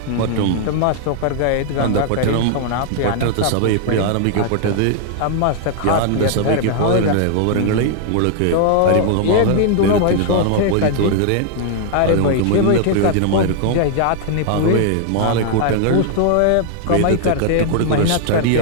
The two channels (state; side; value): different; both; correlation 0.00